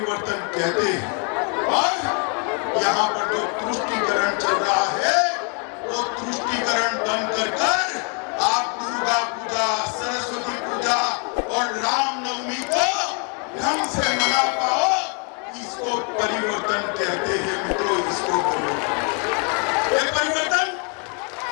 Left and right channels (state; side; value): quieter; right; 37.7 dB